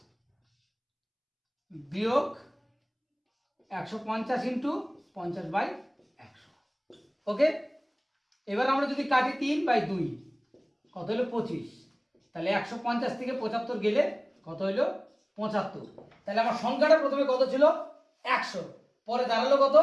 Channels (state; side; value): identical; both; correlation 1.00